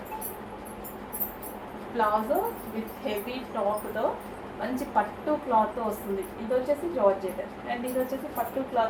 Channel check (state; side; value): identical; both; correlation 1.00